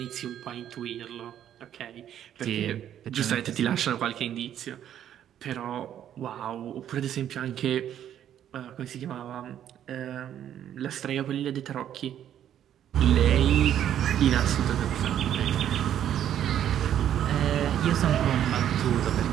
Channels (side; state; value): left; quieter; 10.4 dB